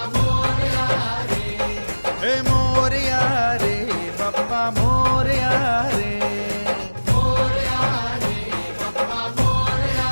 मोरया रे हे मोरया रे बप्पा मोरया रे बप्पा मोरया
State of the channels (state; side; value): inverted; both; correlation -1.00